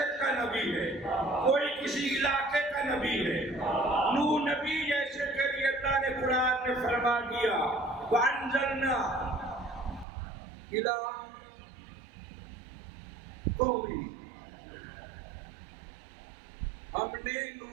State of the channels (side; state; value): left; drops out; at 10.1 s